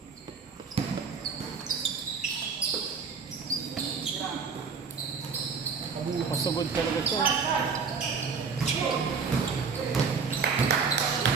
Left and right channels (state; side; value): quieter; left; 5.5 dB